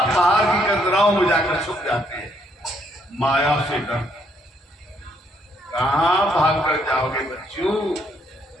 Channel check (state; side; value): normal; both; correlation 0.71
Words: पहाड़ की कतराओं में जाकर छुप जाते हैं। माया से डर, कहाँ भाग कर जाओगे बच्चों,